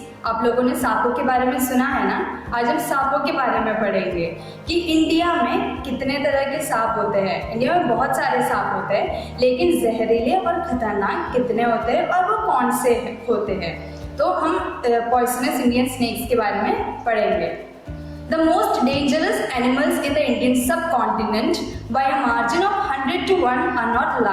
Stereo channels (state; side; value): identical; both; correlation 1.00